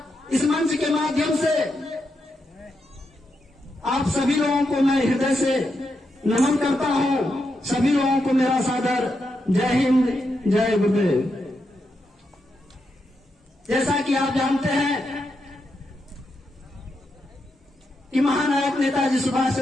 इस मंच के माध्यम से आप सभी लोगों को मैं हृदय से नमन करता हूं। सभी लोगों को मेरा सादर जय हिंद, जय गुरुदेव। जैसा कि आप जानते हैं कि महानायक नेताजी सुभाष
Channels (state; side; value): normal; both; correlation 0.84